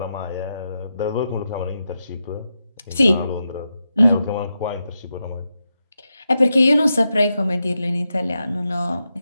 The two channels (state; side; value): inverted; both; correlation -0.87